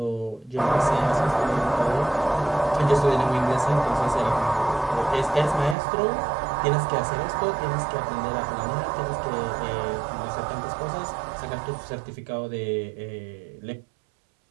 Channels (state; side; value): drops out; left; at 5.8 s